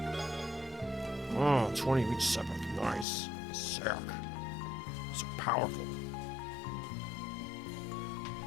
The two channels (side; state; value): right; drops out; at 3.1 s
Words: Oh, 20 reach separate. Nice. Sick. So powerful.